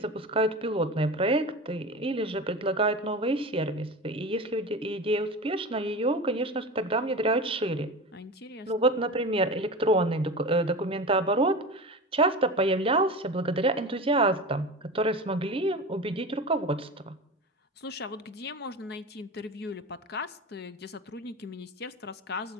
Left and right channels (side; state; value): both; normal; correlation 0.29